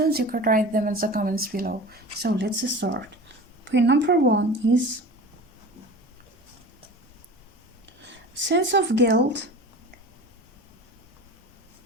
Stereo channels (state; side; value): normal; both; correlation 0.36